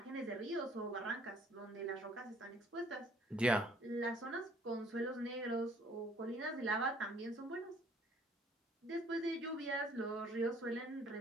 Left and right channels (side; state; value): both; normal; correlation 0.59